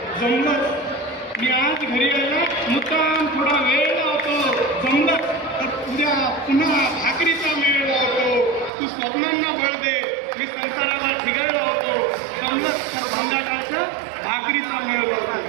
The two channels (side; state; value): left; drops out; at 8.7 s